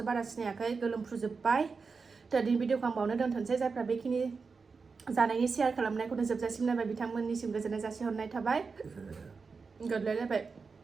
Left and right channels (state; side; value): quieter; left; 4.8 dB